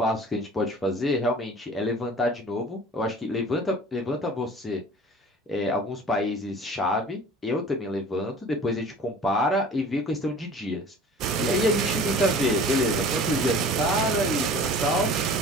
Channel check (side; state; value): both; normal; correlation 0.44